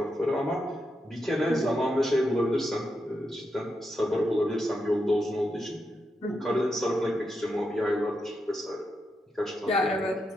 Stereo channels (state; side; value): normal; both; correlation 0.85